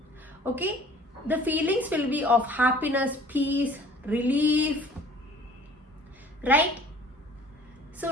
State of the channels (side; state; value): both; normal; correlation 0.51